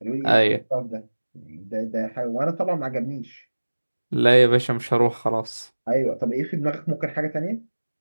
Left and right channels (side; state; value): both; inverted; correlation -1.00